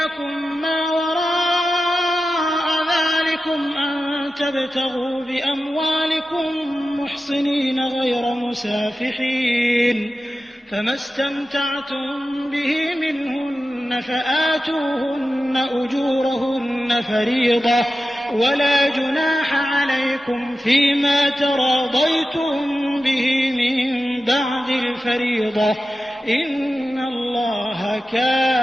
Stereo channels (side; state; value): both; normal; correlation 0.93